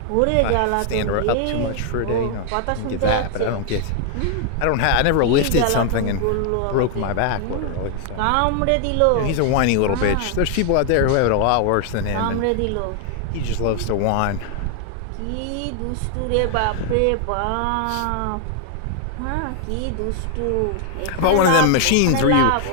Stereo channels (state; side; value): different; both; correlation 0.00